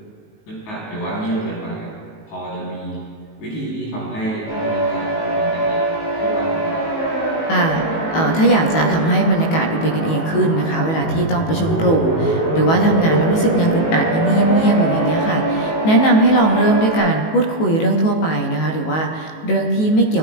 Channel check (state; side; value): late; right; 19 ms